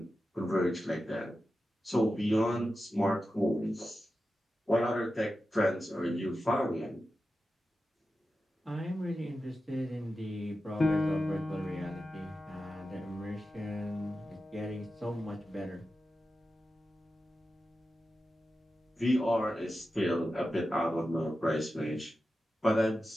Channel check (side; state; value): both; normal; correlation 0.92